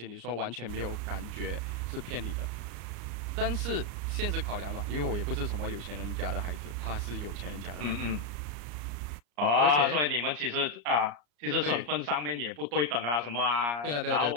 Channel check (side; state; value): left; late; 34 ms